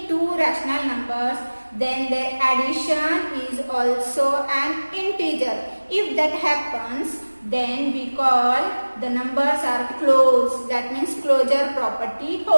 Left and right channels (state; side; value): inverted; both; correlation -1.00